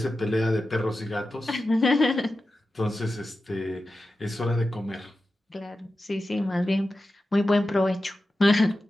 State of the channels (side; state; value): both; normal; correlation 0.93